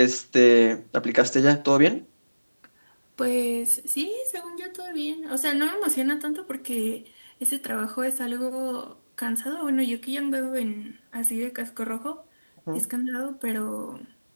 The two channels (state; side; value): inverted; both; correlation -1.00